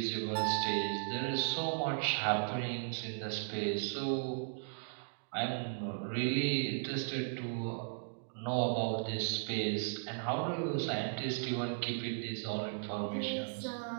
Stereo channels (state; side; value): silent; left; digital silence